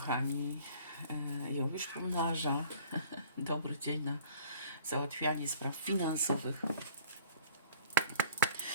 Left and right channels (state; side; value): inverted; both; correlation -0.50